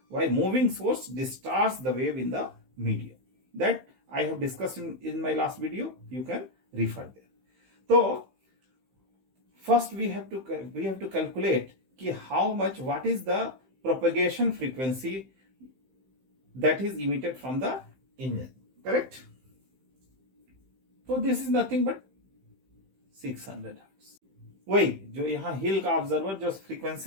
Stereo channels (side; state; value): left; late; 15 ms